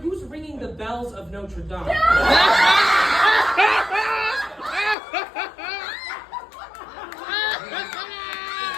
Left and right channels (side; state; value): right; drops out; at 5.0 s